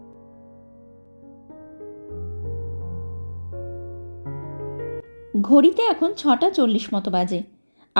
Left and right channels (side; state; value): both; inverted; correlation -1.00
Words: ঘড়িতে এখন 6:40 মতো বাজে,